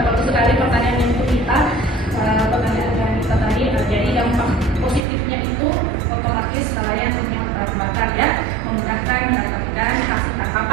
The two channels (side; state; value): left; drops out; at 5.1 s